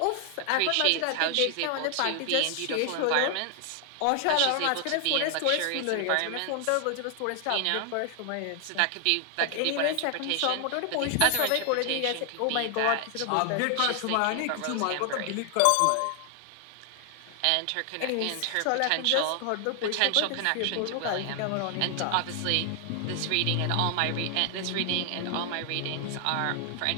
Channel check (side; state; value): both; different; correlation 0.00